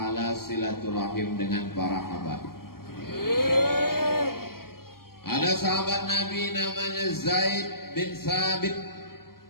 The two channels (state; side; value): late; right; 0.93 ms